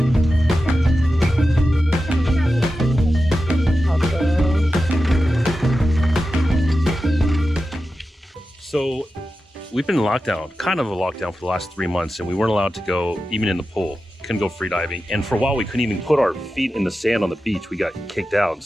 So we've been in lockdown, kind of a lockdown for the last 3 months, and we weren't allowed to go even in the pool. Couldn't go free diving. And for a while, we couldn't even put our feet in the sand on the beach. We got kicked out.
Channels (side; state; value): both; normal; correlation 0.92